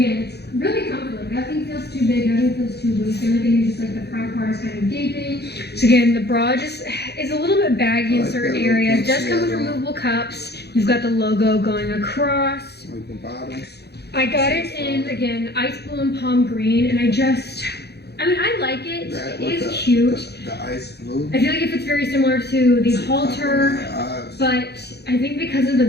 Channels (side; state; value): right; late; 0.48 ms